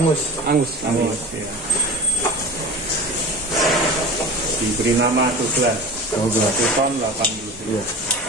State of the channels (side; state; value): both; normal; correlation 0.35